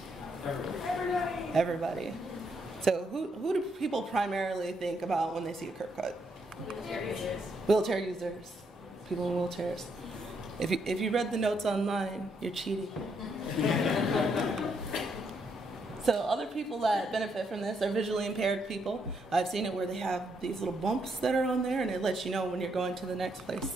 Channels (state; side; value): normal; both; correlation 0.76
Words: Everybody. Everybody. So, who do people primarily think about when they see a curb cut? Wheelchair users. Wheelchair users. People in wheelchairs. If you read the notes online, you're cheating. So other people that benefit from this are visually impaired people. I've seen it where they have these little bumps that are on there, and it lets you know when you're going to the next